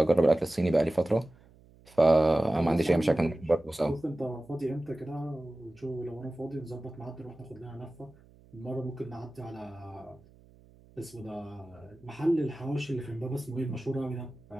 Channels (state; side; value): noise; right; hum, 26 dB below the sound